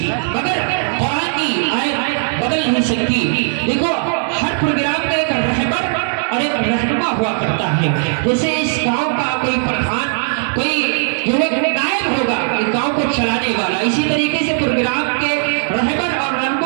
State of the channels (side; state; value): left; silent; 61 dB below the other